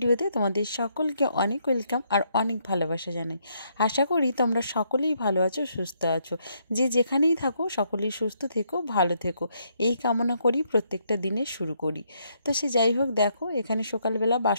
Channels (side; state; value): both; inverted; correlation -0.74